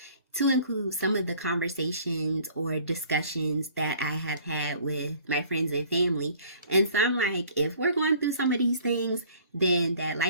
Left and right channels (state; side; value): inverted; both; correlation -0.54